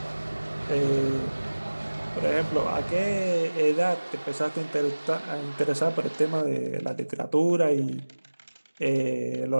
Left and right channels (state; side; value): inverted; both; correlation -1.00